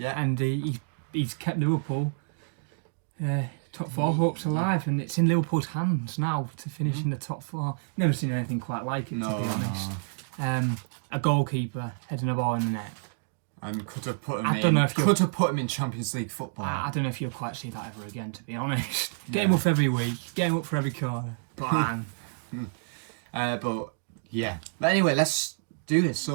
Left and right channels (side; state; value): left; silent; digital silence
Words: And he's kept Liverpool top 4 hopes alive, and it's in Liverpool's hands now to finish in the top 4. Never seen anything quite like it, to be honest. A goalkeeper heading a ball in the net. And could have put him in Champions League football. I don't know if you'll quite see that ever again, to be honest. Get him up every week, get him up for every corner. Bang. But anyway, let's do this.